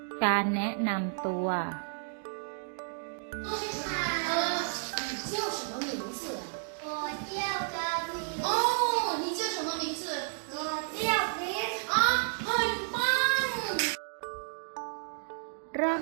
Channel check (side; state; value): left; silent; digital silence